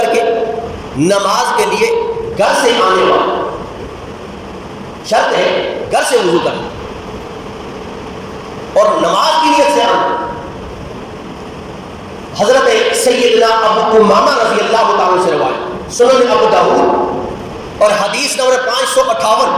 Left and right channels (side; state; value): both; identical; correlation 1.00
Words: کے نماز کے لیے گھر سے آنے والا، شرط ہے گھر سے وضو کرنا اور نماز کی نیت سے آنا۔ حضرت سیدنا ابو امامہ رضی اللہ تعالیٰ سے روایت، سنن ابو داؤد اور حدیث نمبر 558،